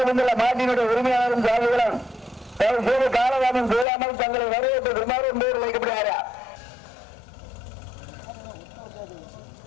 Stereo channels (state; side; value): drops out; right; at 3.9 s